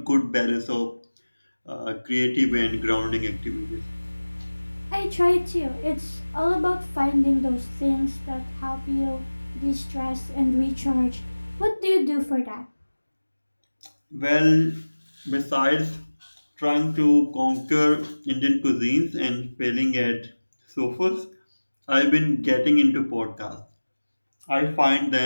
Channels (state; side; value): inverted; both; correlation -1.00